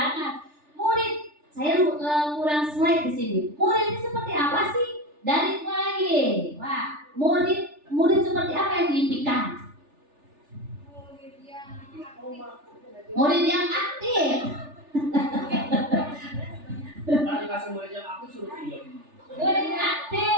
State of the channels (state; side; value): late; left; 3.4 ms